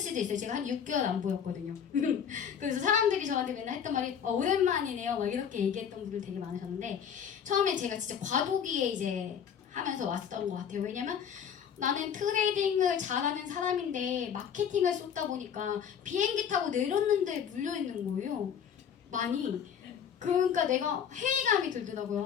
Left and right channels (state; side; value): quieter; right; 8.0 dB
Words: 있어요. 제가 한 6개월 안 보였거든요. 그래서 사람들이 저한테 맨날 했던 말이 오랜만이네요. 막 이렇게 얘기했던 분들 되게 많으셨는데 처음에 제가 진짜 과도기에 이제 하면서 왔던 것 같아요. 왜냐면 나는 트레이딩을 잘하는 사람인데 마케팅을 쏟다 보니까 비행기 타고 내렸는데 물려있는 거예요. 많이. 그러니까 내가 회의감이